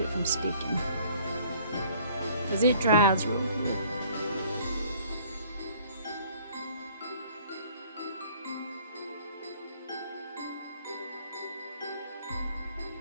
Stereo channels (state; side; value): inverted; both; correlation -0.56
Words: from sticking, because it dries real good.